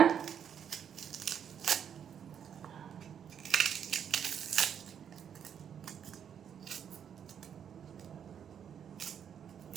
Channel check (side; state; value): left; quieter; 8.4 dB